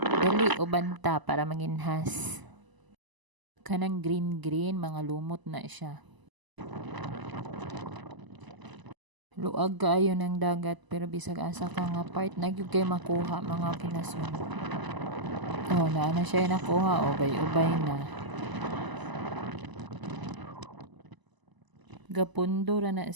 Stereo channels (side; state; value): left; late; 1.0 ms